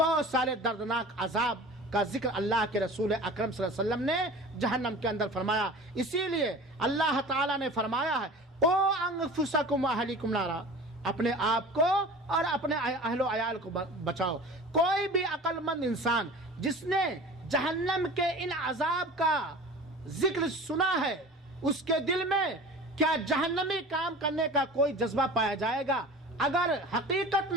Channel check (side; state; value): both; normal; correlation 0.38